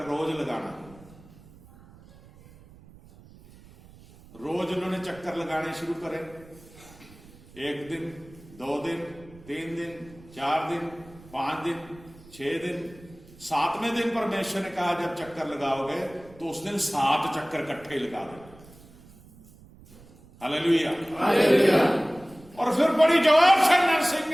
रोज लगाना। रोज उन्होंने चक्कर लगाने शुरू करे, 1 दिन, 2 दिन, 3 दिन, 4 दिन, 5 दिन, 6 दिन, 7वें दिन परमेश्वर ने कहा जब चक्कर लगाओगे तो उस दिन 7 चक्कर इकट्ठे लगा दो। Hallelujah, hallelujah. और फिर बड़ी जोर से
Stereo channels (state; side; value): noise; right; rumble, 23 dB below the sound